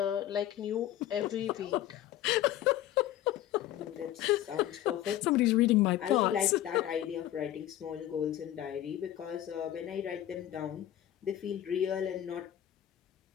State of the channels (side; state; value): right; quieter; 12.6 dB